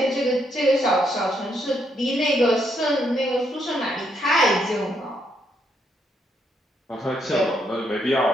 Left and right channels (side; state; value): both; normal; correlation 0.75